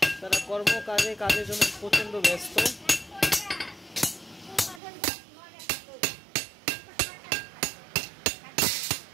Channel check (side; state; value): left; drops out; at 4.8 s